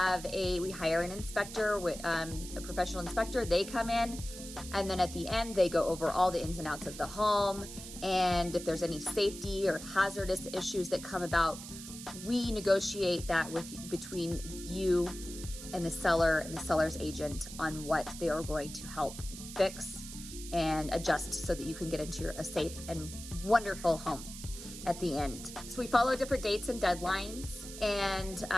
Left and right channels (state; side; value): noise; right; hiss, 12 dB below the sound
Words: an inspector, a professional inspector. They come in, and then at the end, they go over all the ins and outs of the home. And if there's any safety or hazardous issues that come about, we negotiate that between you and the seller and the seller's agent on what they are going to help fix and adjust so that you can get into a safe and wonderful home at the end. So we follow different dates and deadlines, and